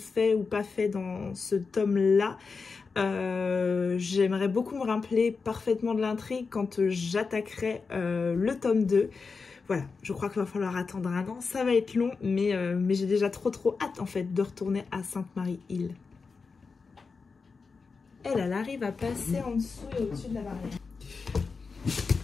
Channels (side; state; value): right; quieter; 4.7 dB